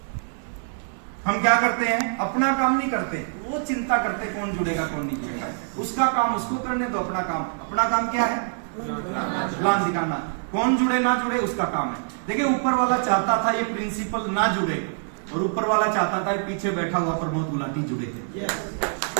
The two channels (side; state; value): left; silent; 62 dB below the other